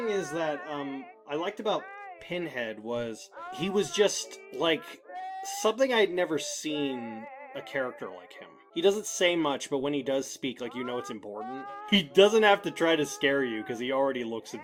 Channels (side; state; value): both; identical; correlation 1.00